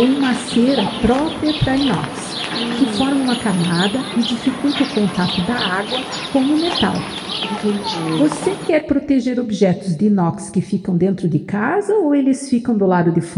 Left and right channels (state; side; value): identical; both; correlation 1.00